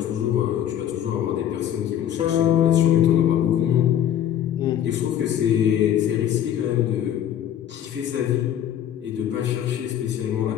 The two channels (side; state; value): right; quieter; 10.5 dB